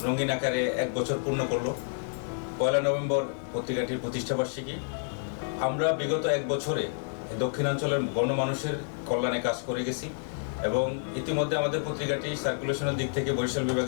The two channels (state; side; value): silent; right; 56 dB below the other